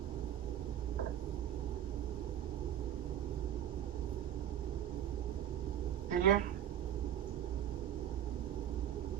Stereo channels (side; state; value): left; quieter; 10.4 dB